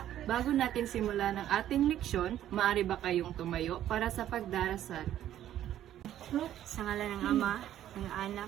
Bago natin simulan ang ating leksyon, maaari ba kayong tumayo para sa pagdarasal? Sa ngalan ng Ama, ng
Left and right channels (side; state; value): left; quieter; 11.9 dB